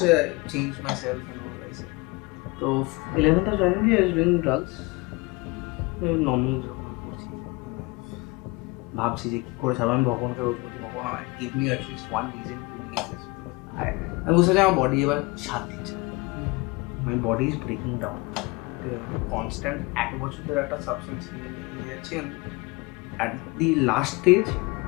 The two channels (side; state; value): right; quieter; 25.7 dB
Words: change myself and all this তো 11th of January I was doing drugs normal যখন করছি ভাবছি যে কী করে ছাড়বো আমি ভগবানকে রোজ বলছি ভগবান give me at least one reason to live this আমি বুঝতে চাই আমার বডি এবার সাথ দিচ্ছে my body is breaking down ঠিক আছে কনস্ট্যান্ট 1 বছর ধরে একটা সাবস্টেন্স নিয়ে যাচ্ছি অ্যাট দি লাস্ট স্টেজ